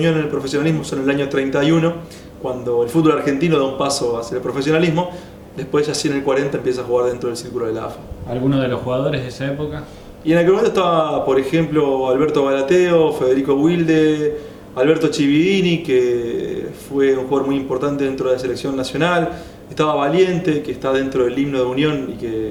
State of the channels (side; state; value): both; identical; correlation 1.00